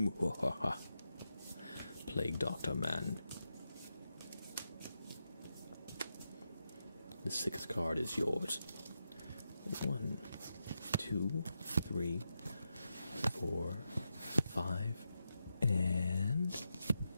Plague Doctor Man. The 6th card is yours. 1, 2, 3, 4, 5, and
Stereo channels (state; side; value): inverted; both; correlation -0.87